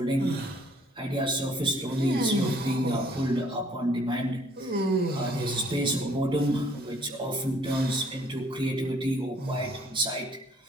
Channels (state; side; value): normal; both; correlation 0.61